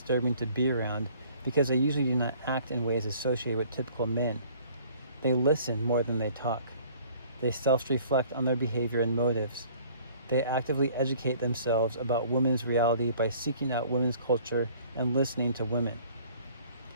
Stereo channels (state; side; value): inverted; both; correlation -0.54